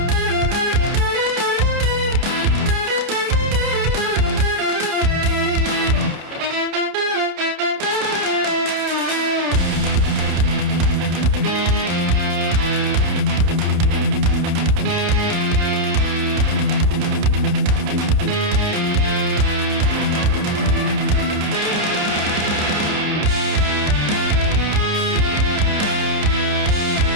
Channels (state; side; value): late; left; 29 ms